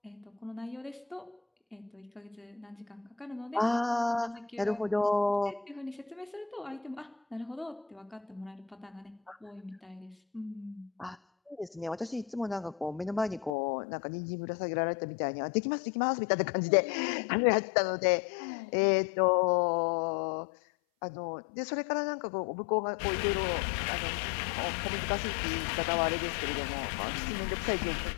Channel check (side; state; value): right; drops out; at 13.5 s